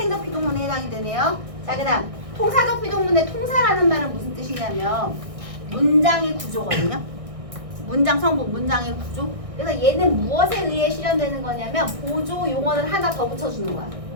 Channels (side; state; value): left; late; 1.6 ms